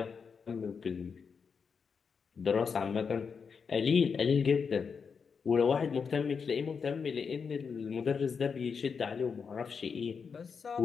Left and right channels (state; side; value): quieter; right; 5.9 dB